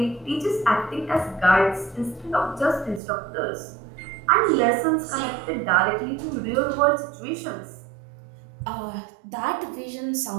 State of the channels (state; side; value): drops out; left; at 3.0 s